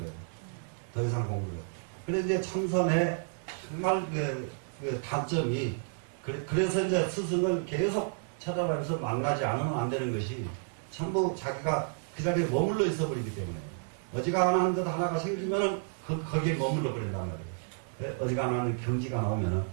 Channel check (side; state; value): left; silent; 57 dB below the other